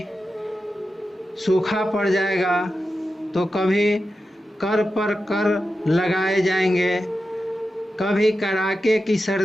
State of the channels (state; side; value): normal; both; correlation 0.91